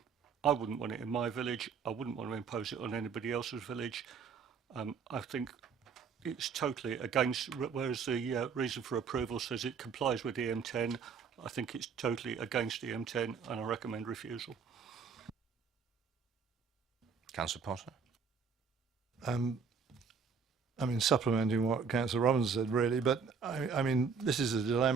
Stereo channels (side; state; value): left; quieter; 5.8 dB